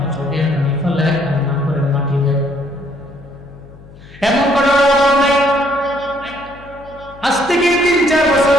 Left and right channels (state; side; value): noise; left; hum, 22 dB below the sound